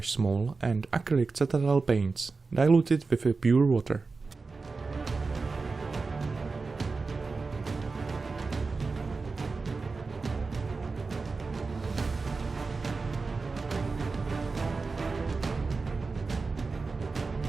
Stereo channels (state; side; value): quieter; left; 4.2 dB